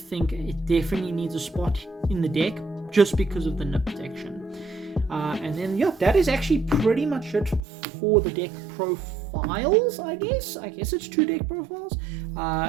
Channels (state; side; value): drops out; left; at 7.6 s